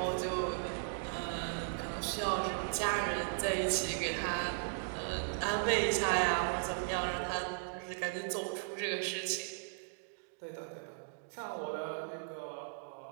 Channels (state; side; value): silent; left; digital silence